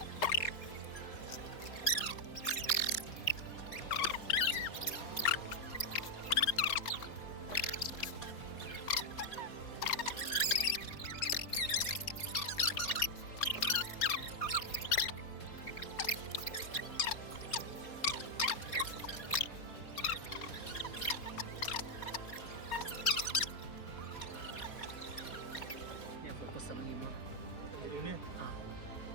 Ya fokus sama Nimo. ini Ah.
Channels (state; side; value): late; right; 4.3 ms